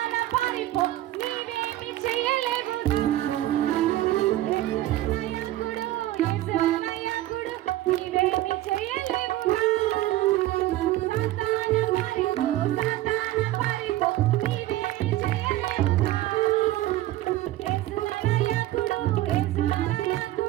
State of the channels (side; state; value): left; quieter; 15.3 dB